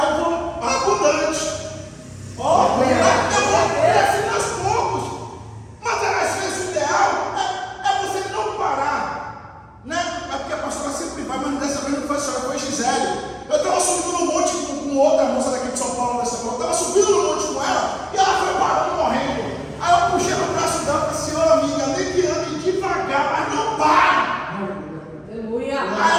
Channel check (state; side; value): identical; both; correlation 1.00